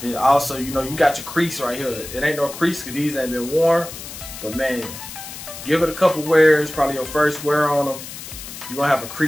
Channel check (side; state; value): left; noise; hiss, 12 dB below the sound